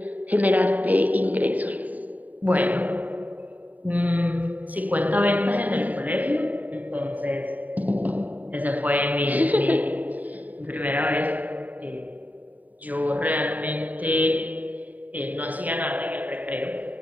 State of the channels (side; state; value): left; late; 0.076 ms